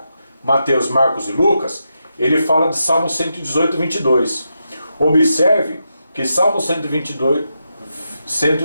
Mateus, Marcos e Lucas, ele fala de Salmo 118, 22. Observe que Salmo 118,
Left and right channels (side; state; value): both; inverted; correlation -0.86